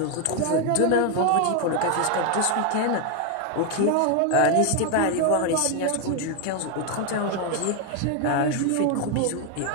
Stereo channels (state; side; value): different; both; correlation 0.01